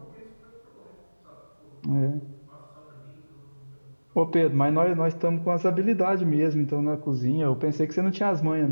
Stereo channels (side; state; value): both; inverted; correlation -1.00